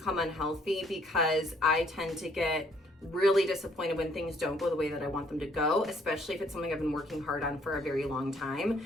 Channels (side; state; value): both; normal; correlation 0.64